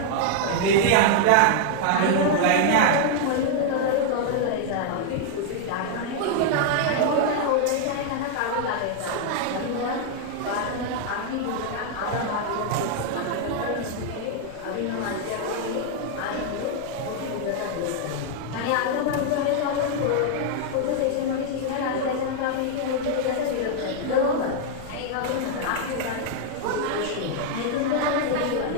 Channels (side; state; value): both; different; correlation 0.00